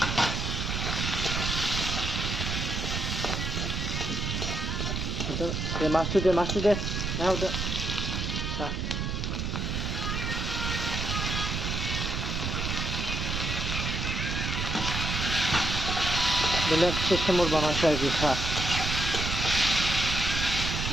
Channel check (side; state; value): right; noise; rumble, 1 dB below the sound